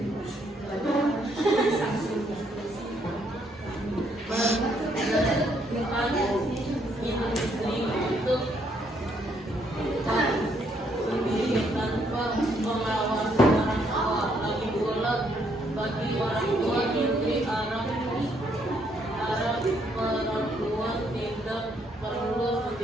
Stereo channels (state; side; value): normal; both; correlation 0.71